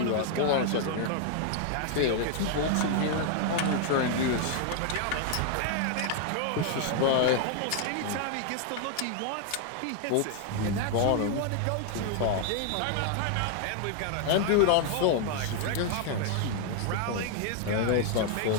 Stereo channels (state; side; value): different; both; correlation 0.00